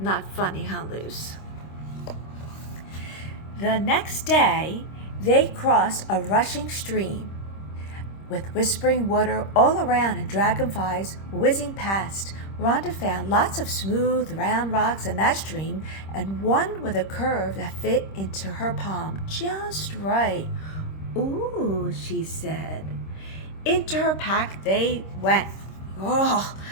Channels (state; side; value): late; right; 26 ms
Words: funny, huh, Luce? The next day, they crossed a rushing stream with whispering water all around and dragonflies whizzing past. Rhonda found lots of smooth, round rocks in that stream and one with a curve that fit into her palm just right. Ooh, she said. Into her pack they went. Oh,